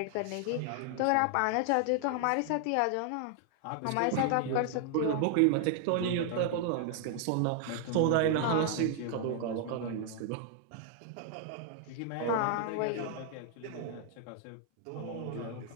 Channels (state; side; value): different; both; correlation 0.00